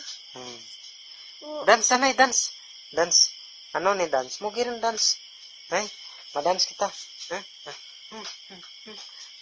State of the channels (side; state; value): both; identical; correlation 1.00